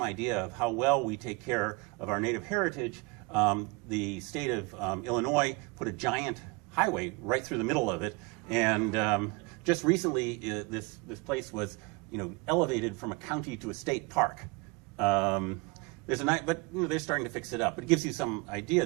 idea of how well we take care of our native heritage, the state of Illinois put a giant highway right through the middle of it. And just recently, this place was elevated from a county to a state park. But they're starting to fix it up. But it gives you some idea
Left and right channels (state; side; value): quieter; left; 27.3 dB